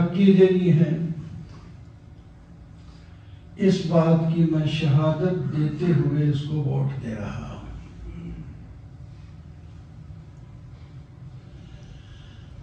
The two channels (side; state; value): both; identical; correlation 1.00